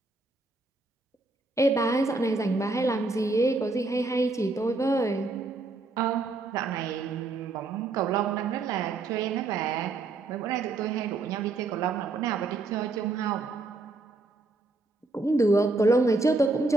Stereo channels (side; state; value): left; quieter; 3.4 dB